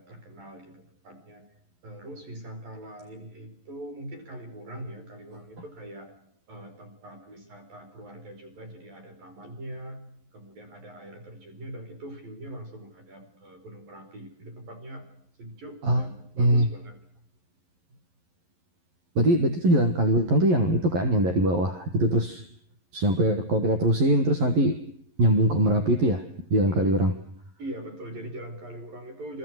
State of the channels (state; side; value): late; left; 11 ms